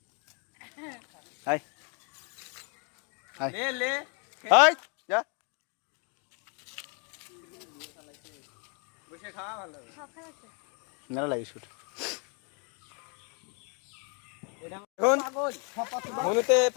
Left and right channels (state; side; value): quieter; right; 37.2 dB